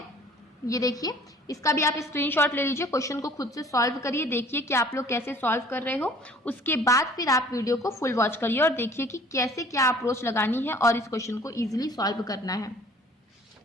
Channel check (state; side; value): normal; both; correlation 0.51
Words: ये देखिए, इसका भी आप स्क्रीनशॉट ले लीजिए, क्वेश्चन को खुद से सॉल्व करिए, देखिए कि आप लोग कैसे सॉल्व कर रहे हो। उसके बाद फिर आप वीडियो को फुल वॉच करिए और देखिए कि कैसे क्या अप्रोच लगानी है और इस क्वेश्चन को इजीली सॉल्व करना है।